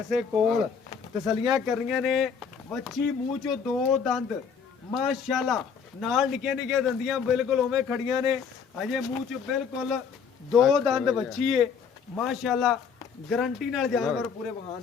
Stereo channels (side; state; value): right; quieter; 6.4 dB